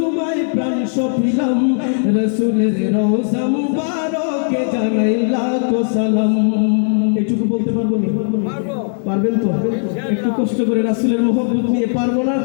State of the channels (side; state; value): right; silent; 61 dB below the other